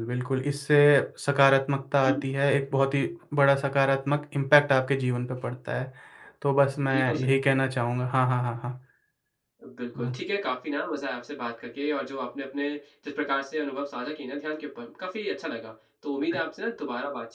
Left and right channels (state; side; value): identical; both; correlation 1.00